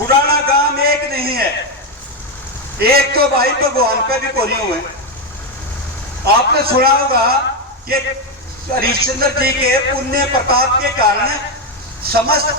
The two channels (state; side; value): normal; both; correlation 0.07